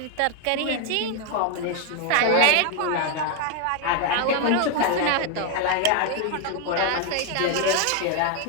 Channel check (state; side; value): different; both; correlation 0.01